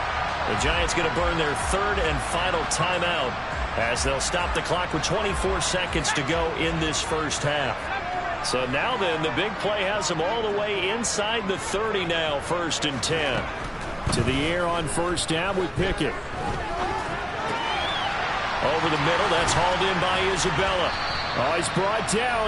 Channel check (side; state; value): both; identical; correlation 1.00